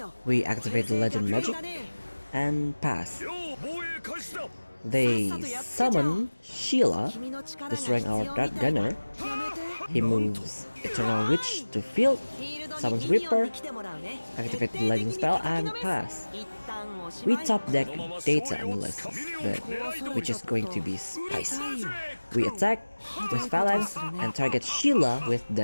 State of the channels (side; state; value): both; inverted; correlation -1.00